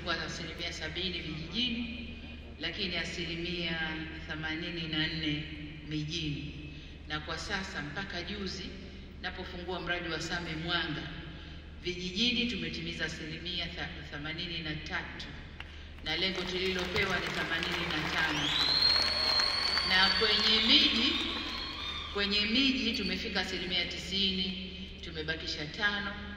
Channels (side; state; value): both; identical; correlation 1.00